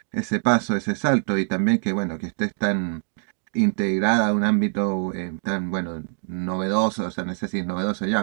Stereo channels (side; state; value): left; silent; digital silence